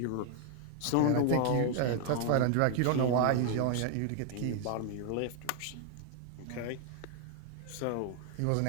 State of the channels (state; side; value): different; both; correlation 0.00